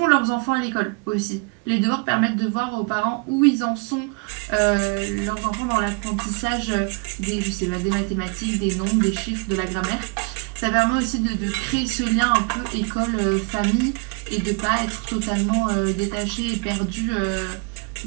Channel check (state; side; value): quieter; left; 33.2 dB